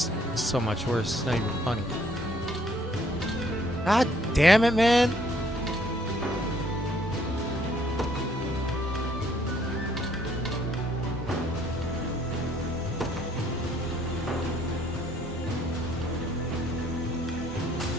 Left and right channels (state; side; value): normal; both; correlation 0.64